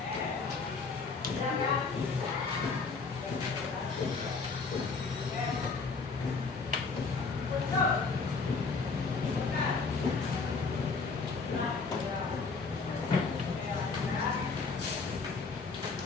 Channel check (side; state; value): right; quieter; 4.5 dB